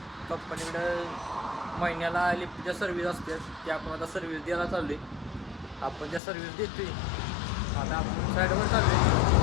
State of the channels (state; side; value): drops out; right; at 6.2 s